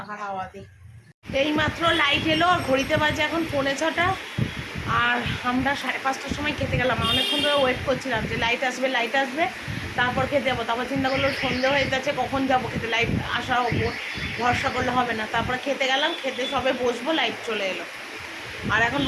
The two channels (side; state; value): both; identical; correlation 1.00